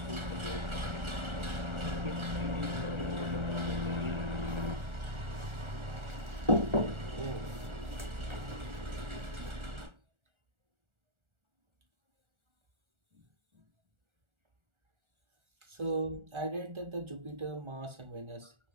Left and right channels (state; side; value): late; left; 1.4 ms